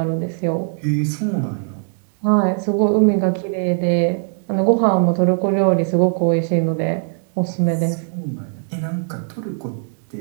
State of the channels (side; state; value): left; silent; digital silence